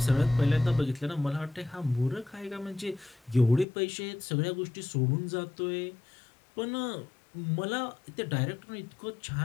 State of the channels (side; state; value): right; drops out; at 3.7 s